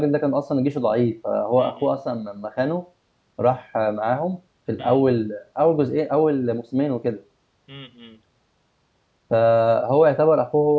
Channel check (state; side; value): identical; both; correlation 1.00